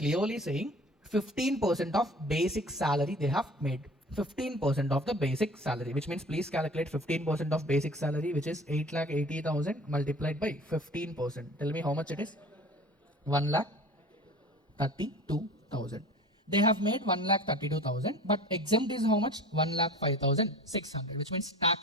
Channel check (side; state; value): both; normal; correlation 0.43